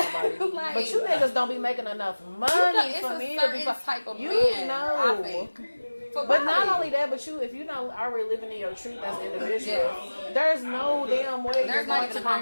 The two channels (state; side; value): inverted; both; correlation -1.00